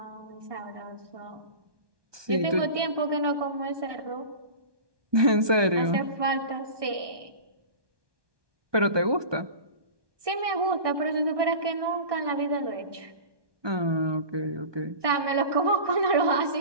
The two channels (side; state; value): left; late; 1.2 ms